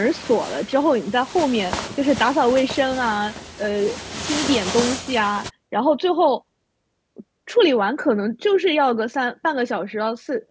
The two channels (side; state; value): both; identical; correlation 1.00